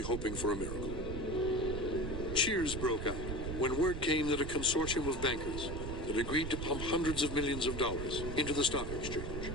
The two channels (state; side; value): noise; right; rumble, 5 dB below the sound